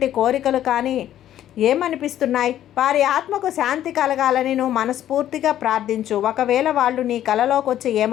కోరికలు కానీ ఏమనిపిస్తున్నాయి? వారి ఆత్మకు శాంతి కలగాలని నువ్వు మనస్ఫూర్తిగా ప్రార్థించు. ఒకవేళ వాళ్ళు నీ కలలోకి వచ్చి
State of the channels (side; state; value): right; quieter; 11.8 dB